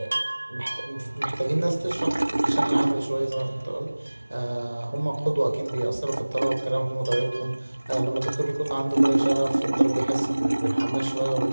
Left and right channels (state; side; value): inverted; both; correlation -1.00